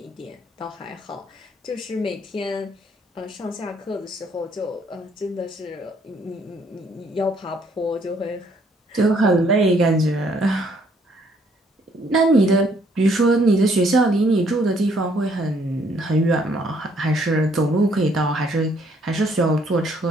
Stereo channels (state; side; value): normal; both; correlation 0.66